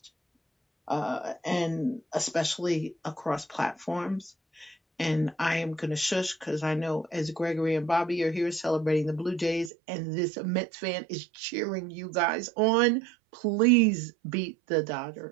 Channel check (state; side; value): drops out; left; at 9.7 s